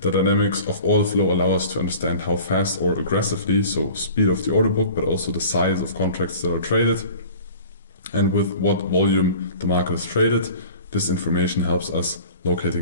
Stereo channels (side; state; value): both; inverted; correlation -0.43